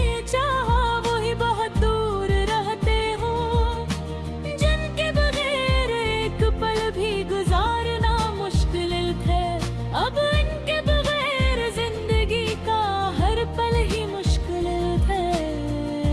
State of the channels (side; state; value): both; identical; correlation 1.00